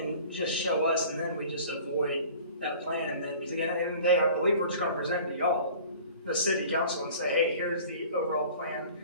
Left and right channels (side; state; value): both; inverted; correlation -0.46